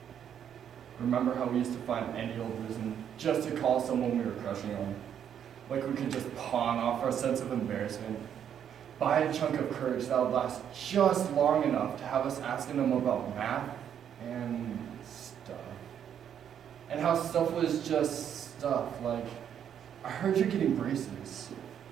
Remember how we used to find any old reason just to call someone we were crushing on, like we could just pawn off our sense of embarrassment, buy a chunk of courage that would last just long enough to have us asking them about math and stuff. And how stuff was just stuff, like, I heard you're getting braces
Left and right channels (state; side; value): quieter; left; 9.0 dB